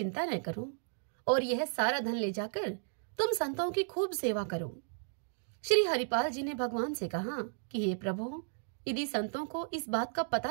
न करो और यह सारा धन ले जाकर तुम संतों की खूब सेवा करो। श्री हरिपाल जी ने भगवान से कहा कि हे प्रभु, यदि संतों को इस बात का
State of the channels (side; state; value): left; silent; digital silence